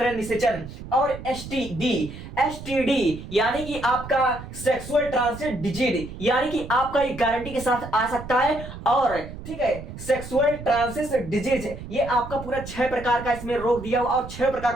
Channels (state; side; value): noise; right; rumble, 12 dB below the sound